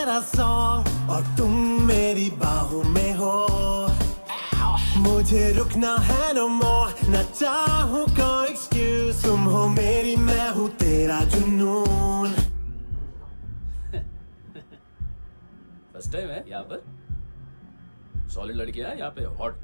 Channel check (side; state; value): both; inverted; correlation -1.00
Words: song और तुम मेरी बाहों में हो। मुझे रुकना है no more, न चाहूँ कोई excuse। तुम हो मेरी, मैं हूँ तेरा जुनून। फर्स्ट टाइम है यहाँ पर। सॉलिड लड़कियां हैं यहाँ पे, हॉट